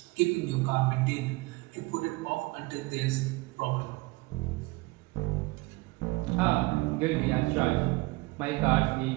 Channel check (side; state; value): left; quieter; 23.3 dB